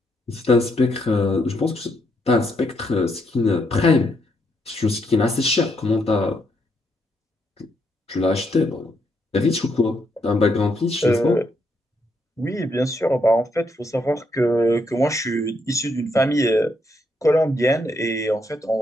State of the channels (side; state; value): both; normal; correlation 0.76